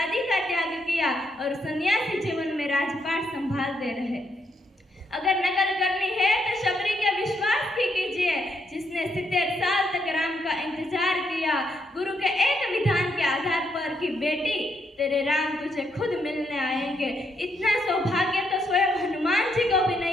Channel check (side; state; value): both; normal; correlation 0.76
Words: का त्याग किया और सन्यासी जीवन में राजपाट संभालते रहे. अगर नकल करनी है तो शबरी के विश्वास की कीजिए, जिसने 70 साल तक राम का इंतजार किया, गुरु के एक विधान के आधार पर कि बेटी तेरे राम तुझे खुद मिलने आएंगे. इतना सौभाग्य तो स्वयं हनुमान जी को भी